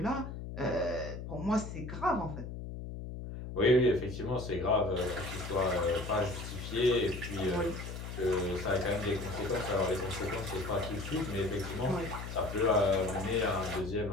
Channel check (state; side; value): noise; left; hum, 8 dB below the sound